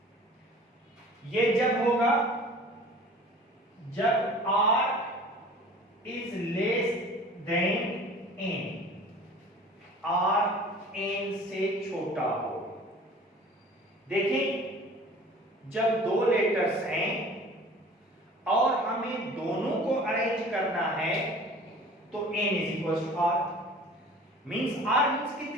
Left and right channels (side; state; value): both; normal; correlation 0.45